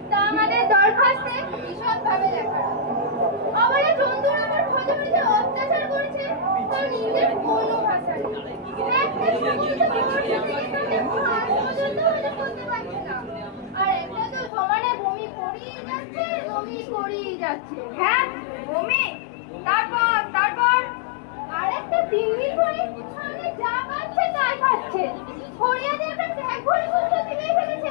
তা আমাদের দরখাস্তে বিশদভাবে লেখা। আবার এই জন্তুর আমার খোঁজে খোঁজে অত্যাচার করেছে, তার নিজের কোনো ভাষা নেই। একটা সমস্ত করতে পারছে না, আর একটা তো সমানে বমি করিয়ে যাচ্ছে, বমি করিয়ে যাচ্ছে। হ্যাঁ, বমি? তারপর আর একটা তিন্নি করে সামনে যা পাচ্ছে তাই খাচ্ছে। হরিয়া দিয়ে একটা ট্যাগ ভরে কুকুর থেকে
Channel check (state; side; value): drops out; right; at 14.5 s